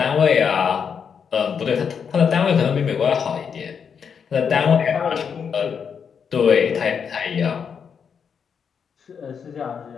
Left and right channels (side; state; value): right; quieter; 6.8 dB